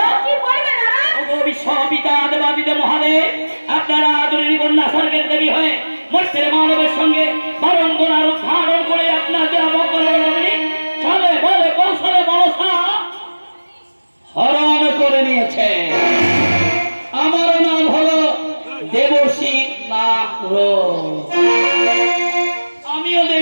কি বলবে নারদ? ওগো বিশ্বপিতা দেবাদিদেব মহাদেব, আপনারা আদরণী কন্যা স্বর্গের দেবী হয়ে মর্তের মানবের সঙ্গে বারম্বার ধারণ করে আপনাদের চলে বলে কৌশলে মনসা হরণ করে নিয়েছে। আমার নাম হলো দেবশ্রী নাগর। আমিও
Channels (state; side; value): inverted; both; correlation -1.00